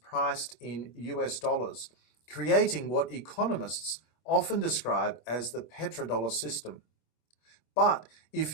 in US dollars, creating what economists often describe as the petrodollar system. But if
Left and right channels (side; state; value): right; late; 26 ms